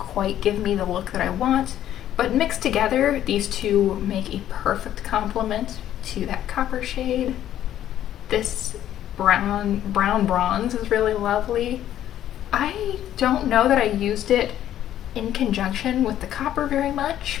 give me the look that I want, but mixed together, these 2 make a perfect complement to that copper shade. This brown bronze is really lovely. I don't know that I used it in conjunction with the copper very much,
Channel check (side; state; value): right; quieter; 11.7 dB